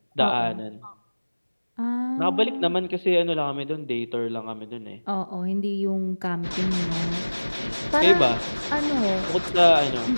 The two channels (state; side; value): inverted; both; correlation -1.00